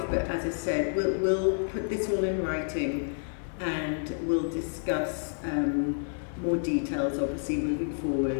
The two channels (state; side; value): silent; right; 55 dB below the other